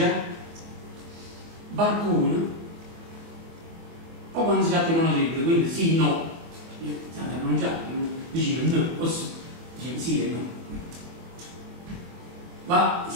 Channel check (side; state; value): left; late; 24 ms